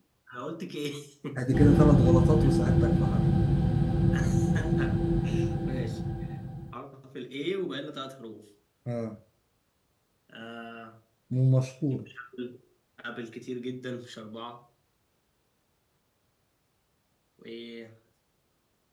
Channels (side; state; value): both; identical; correlation 1.00